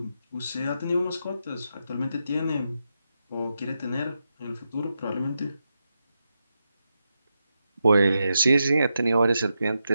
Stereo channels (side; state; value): both; inverted; correlation -0.86